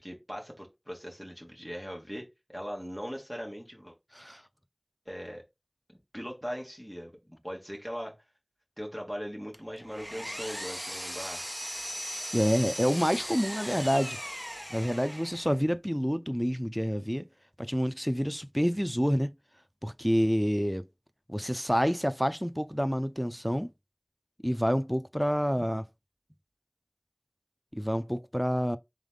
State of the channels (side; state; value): both; identical; correlation 1.00